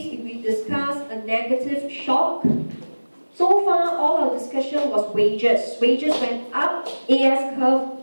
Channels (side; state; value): both; inverted; correlation -1.00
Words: if we discuss a negative shock, so far all our discussion was wages. Wages went up, AS curve